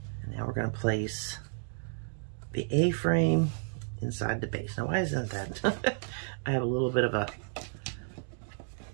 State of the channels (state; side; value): silent; left; digital silence